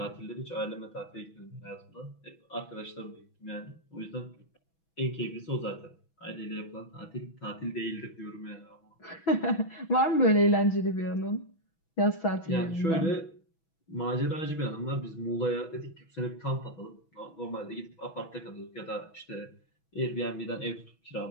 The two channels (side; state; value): right; late; 6.1 ms